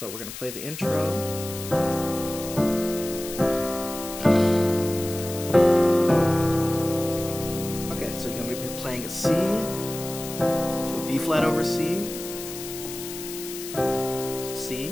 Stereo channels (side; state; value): left; noise; hiss, 10 dB below the sound